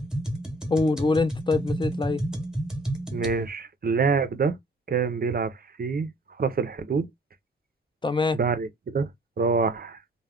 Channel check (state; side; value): normal; both; correlation 0.55